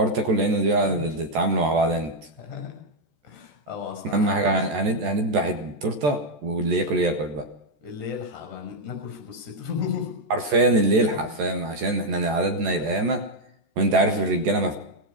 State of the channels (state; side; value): late; left; 14 ms